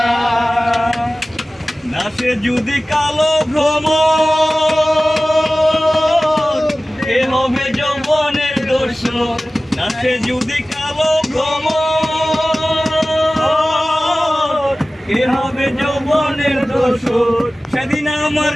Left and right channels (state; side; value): normal; both; correlation 0.97